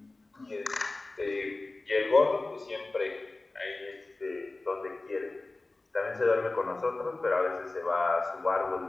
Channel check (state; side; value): quieter; right; 3.1 dB